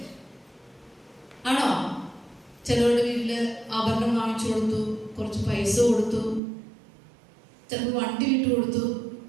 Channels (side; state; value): left; drops out; at 6.4 s